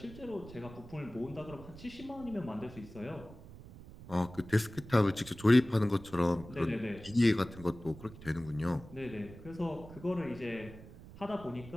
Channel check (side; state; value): right; noise; rumble, 16 dB below the sound